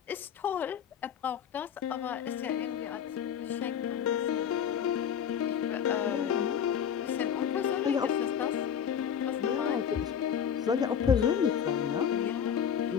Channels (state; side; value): quieter; right; 8.2 dB